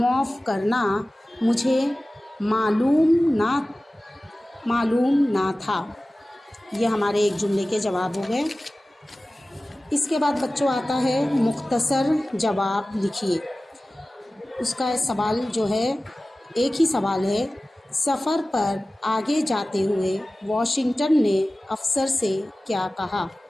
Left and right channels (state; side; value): normal; both; correlation 0.97